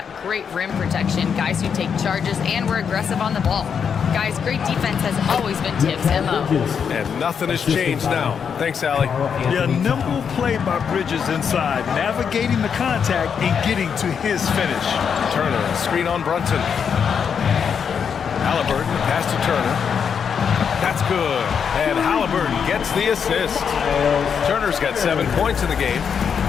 great rim protection, guys who take charges, and we're aggressive on the ball. Guys, great defense has always been Tibbs' MO." And nothing has changed now. Thanks, Allie. Yeah, nimble play by Bridges inside, navigating the contact and getting to his finish. Turner, screen on Brunson. Halliburton, pass to Turner. That's good. And Halliburton gets the assist. Turner's got 7 points in the game.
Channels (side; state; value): right; quieter; 7.0 dB